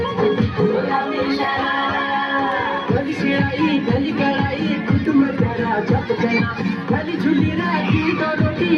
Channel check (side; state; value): both; identical; correlation 1.00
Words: गली गलाई कुटुंब करा झपकना गली झुली राखी तो रोटी